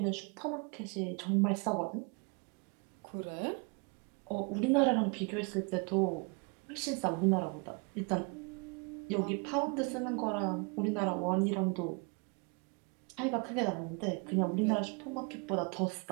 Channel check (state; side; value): quieter; left; 33.8 dB